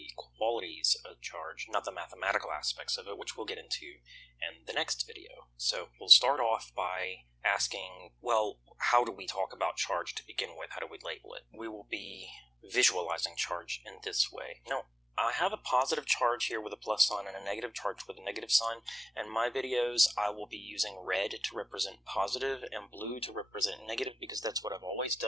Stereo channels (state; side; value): normal; both; correlation 0.96